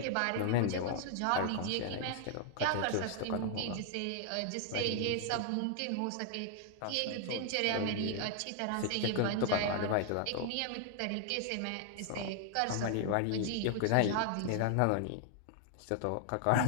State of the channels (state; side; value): different; both; correlation 0.00